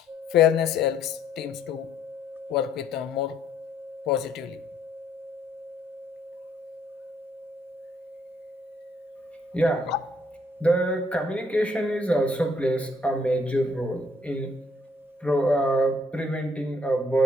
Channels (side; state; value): both; normal; correlation 0.67